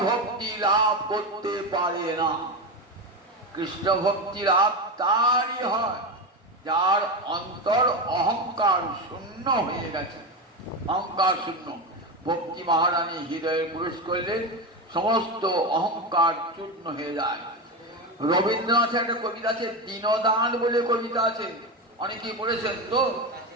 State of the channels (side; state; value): both; normal; correlation 0.17